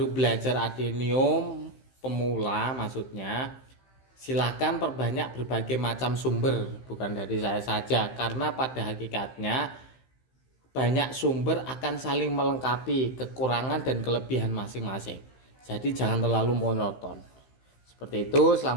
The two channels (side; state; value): right; late; 15 ms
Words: belajar adenium, pemula maksudnya, silahkan perbanyak berbagai macam sumber, bukan dari saya saja, karena pada hakikatnya banyak sumber akan saling melengkapi kekurangan dan kelebihan masing-masing. Jadi jangan terlalu monoton. Seperti itu.